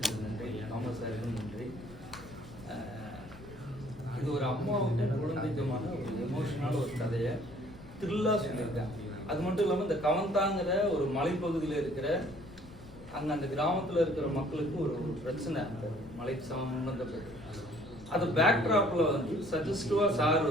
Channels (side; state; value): left; noise; rumble, 18 dB below the sound